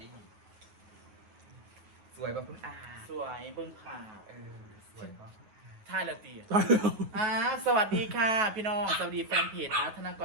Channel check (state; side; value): late; left; 9.4 ms